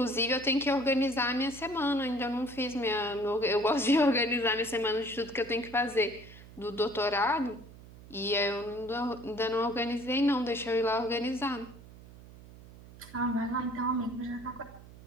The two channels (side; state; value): right; noise; hum, 19 dB below the sound